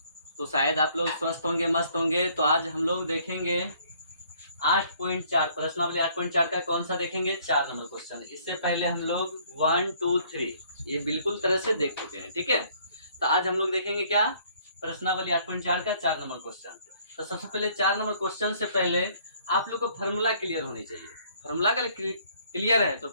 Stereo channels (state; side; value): inverted; both; correlation -0.61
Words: तो शायद आप लोग स्वस्थ होंगे, मस्त होंगे। तो आज हम लोग देखेंगे 8.4 प्रश्नावली 8.4 का कौन सा देखेंगे, 4 नंबर क्वेश्चन। इससे पहले हम लोग 1, 2, 3 ये बिल्कुल तरह से देख चुके हैं, ठीक है। तो आज हम लोग देखेंगे क्या, प्रश्नावली 8.4 का 4 नंबर क्वेश्चन। तो सबसे पहले 4 नंबर क्वेश्चन से पहले आप लोग को फार्मूला क्लियर होनी चाहिए। फार्मूला का क्लियर है तो